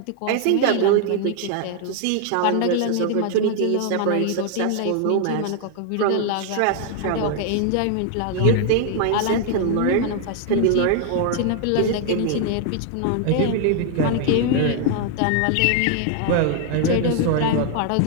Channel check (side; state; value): both; different; correlation 0.00